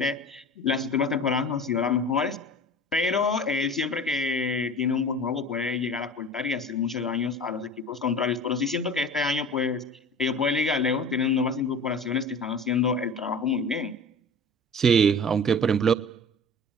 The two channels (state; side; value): normal; both; correlation 0.38